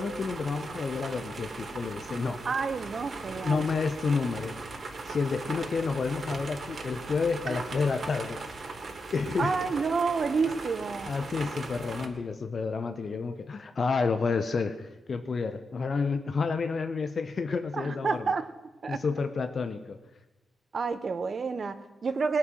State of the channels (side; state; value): both; normal; correlation 0.85